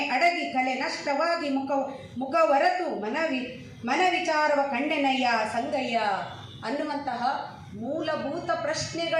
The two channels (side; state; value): both; identical; correlation 1.00